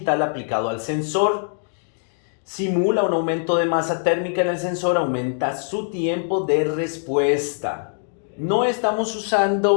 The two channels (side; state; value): right; silent; digital silence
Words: aplicado al sensor. Simula un aumento de masa térmica en el sensor, aumenta su tiempo de respuesta. No estamos